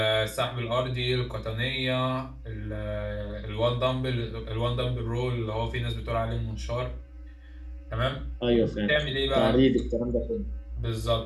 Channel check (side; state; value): both; identical; correlation 1.00